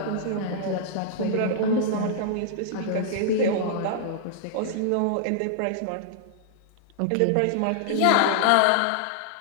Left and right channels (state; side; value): different; both; correlation -0.01